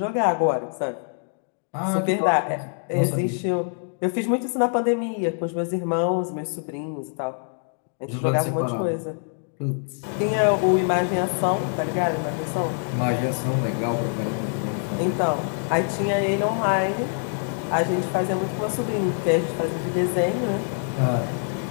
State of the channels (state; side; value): silent; right; 62 dB below the other